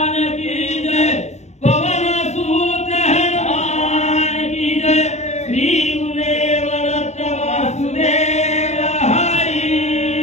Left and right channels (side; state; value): right; late; 0.33 ms